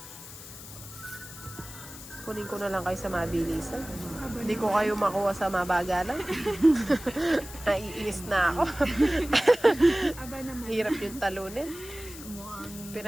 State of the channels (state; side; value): noise; left; hiss, 14 dB below the sound